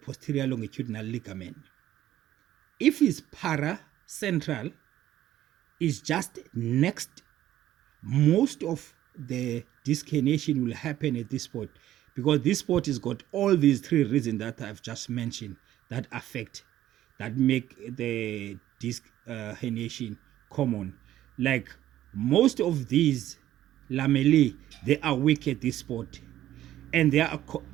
longitudinal ligament. If it's paracentral, it's just next. Most of the disc herniation will happen at this spot because this spot has got all these 3 reasons that I've just mentioned that affect, that make the disc herniation common. Like most of these lamellae, they are weak at this spot. and they are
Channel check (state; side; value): quieter; left; 13.0 dB